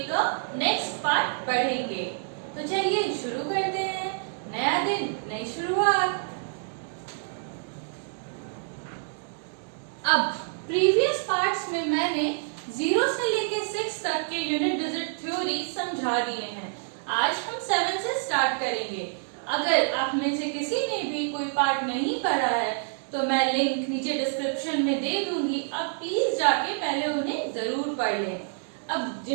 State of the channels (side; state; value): left; silent; digital silence